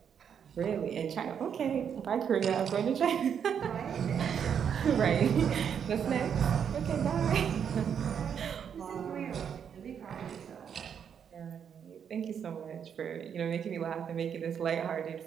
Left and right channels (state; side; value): quieter; left; 7.9 dB